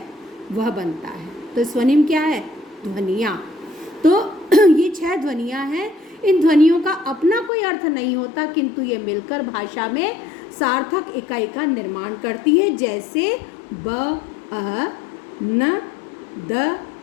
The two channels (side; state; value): right; drops out; at 7.5 s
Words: वह बनता है। तो स्वनिम क्या है? ध्वनियाँ। तो ये 6 ध्वनियाँ हैं। इन ध्वनियों का अपना कोई अर्थ नहीं होता, किंतु ये मिलकर भाषा में सार्थक इकाई का निर्माण करती है। जैसे ब, अ, न, द,